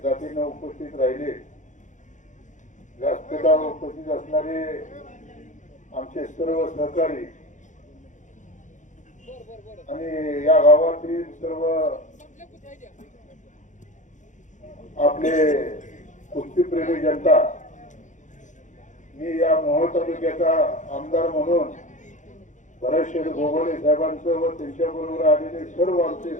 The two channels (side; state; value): right; late; 0.36 ms